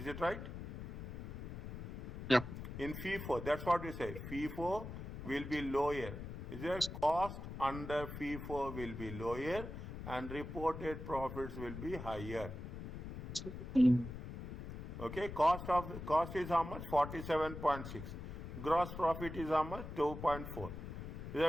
it right? Yeah. In FIFO, that's what we say. FIFO will be lower. Is there cost under FIFO will be lower and reported profits will be higher. Okay, cost is how much? 47.6. Gross profit is how much? 2.4.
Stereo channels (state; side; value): noise; left; rumble, 8 dB below the sound